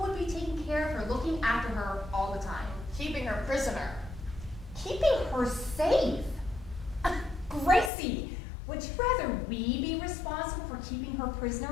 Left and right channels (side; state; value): right; drops out; at 7.9 s